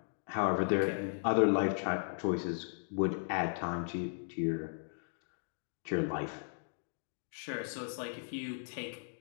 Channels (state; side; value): silent; right; digital silence